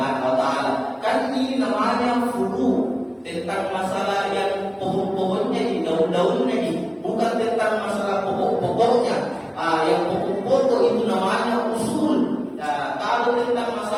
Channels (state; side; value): identical; both; correlation 1.00